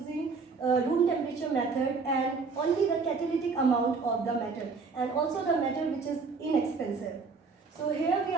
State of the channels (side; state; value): left; quieter; 4.6 dB